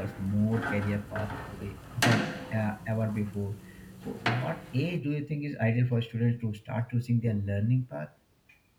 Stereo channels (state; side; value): identical; both; correlation 1.00